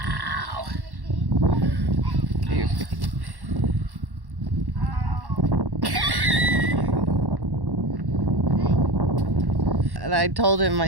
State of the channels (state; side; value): late; left; 1.1 ms